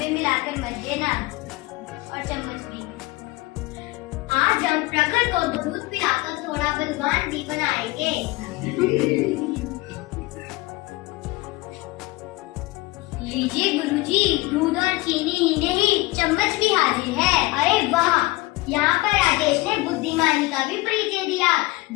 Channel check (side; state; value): right; quieter; 21.5 dB